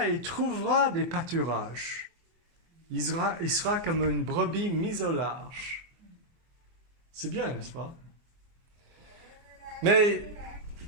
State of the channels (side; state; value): left; late; 24 ms